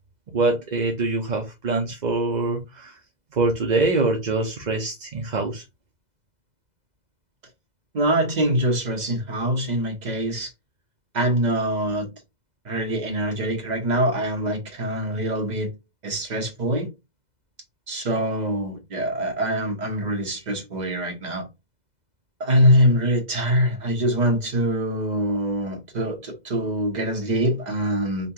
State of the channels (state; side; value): late; left; 2.0 ms